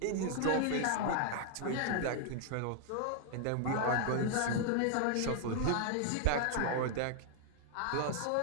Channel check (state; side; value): different; both; correlation 0.00